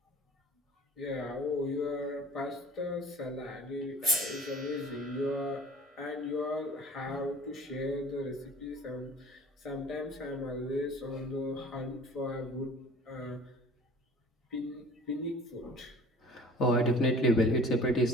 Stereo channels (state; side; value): normal; both; correlation 0.46